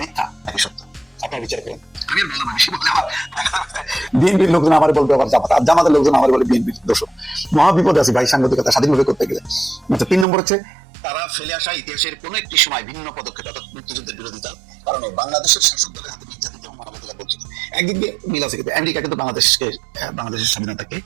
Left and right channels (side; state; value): left; drops out; at 10.2 s